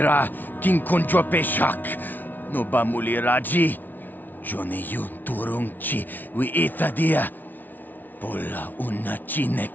king kunjo peshak. No ba mulira ji. Jone yun turung chi wi itadia. Pola una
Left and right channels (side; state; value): right; late; 0.085 ms